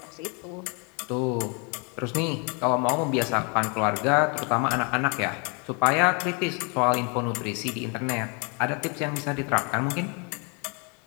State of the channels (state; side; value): quieter; right; 34.3 dB